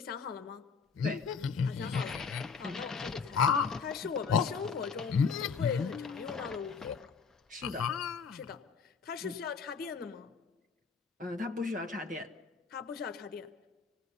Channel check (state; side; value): quieter; right; 5.6 dB